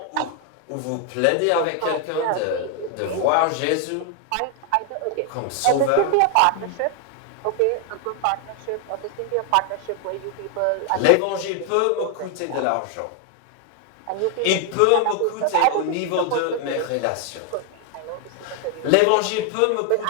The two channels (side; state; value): both; different; correlation 0.00